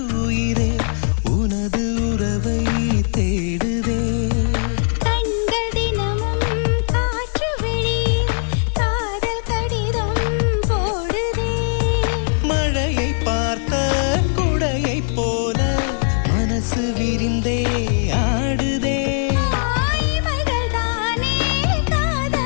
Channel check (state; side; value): silent; right; 64 dB below the other